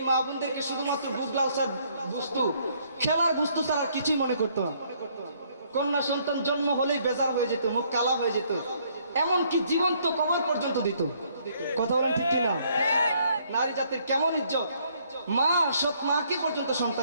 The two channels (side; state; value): both; inverted; correlation -0.66